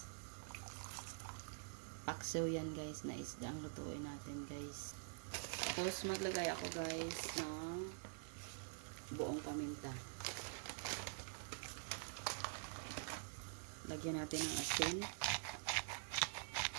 Paksiw yan guys na isda ang lutuin natin guys. Tapos maglagay ako guys ng buong paminta. Lagyan natin ng asin.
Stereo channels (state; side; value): silent; left; digital silence